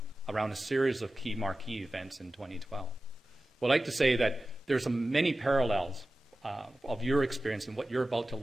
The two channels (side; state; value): both; normal; correlation 0.95